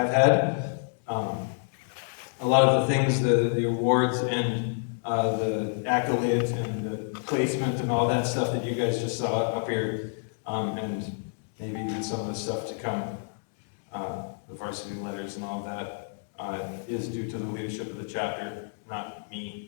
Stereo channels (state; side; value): silent; right; digital silence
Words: had. A lot of the things, the awards and the accolades and the placement and all that stuff that you guys just saw up here, and maybe even some of the stuff to come, the varsity letters and all of that, is due to the leadership of the chapter, not